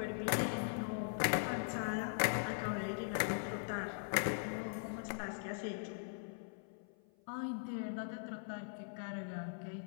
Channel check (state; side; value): silent; right; 50 dB below the other